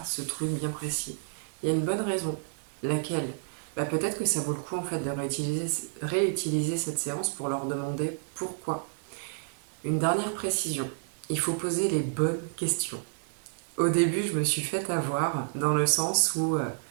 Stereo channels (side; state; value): left; silent; digital silence